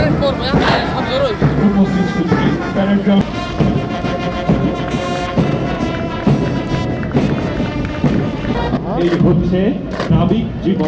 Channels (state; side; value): identical; both; correlation 1.00